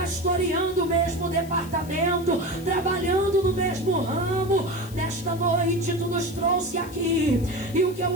o mesmo departamento, trabalhando no mesmo ramo. Nesta noite Tu nos trouxe aqui, e o que eu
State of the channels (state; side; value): noise; left; hiss, 19 dB below the sound